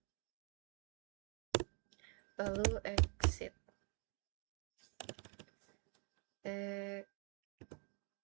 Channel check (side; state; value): left; quieter; 35.6 dB